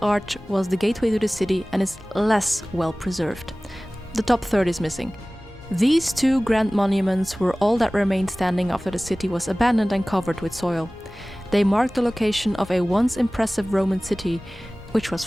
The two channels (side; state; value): both; normal; correlation 0.98